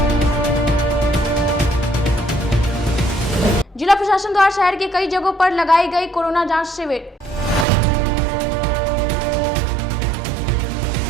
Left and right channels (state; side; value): drops out; left; at 7.7 s